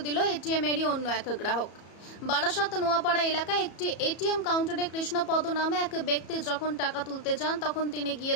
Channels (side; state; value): right; late; 34 ms